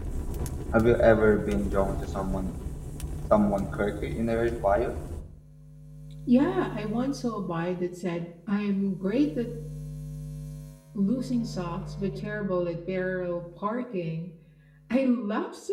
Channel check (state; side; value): identical; both; correlation 1.00